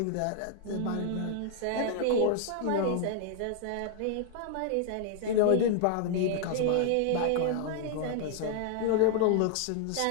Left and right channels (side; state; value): both; different; correlation 0.00